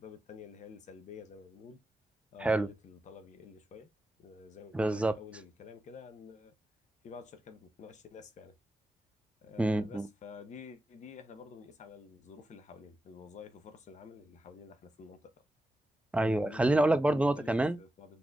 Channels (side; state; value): both; normal; correlation 0.91